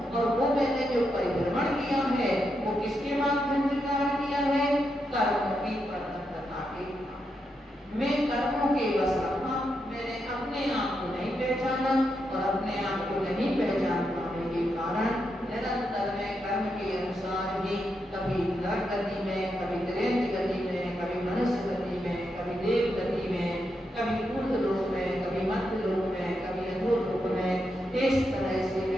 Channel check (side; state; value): both; normal; correlation 0.83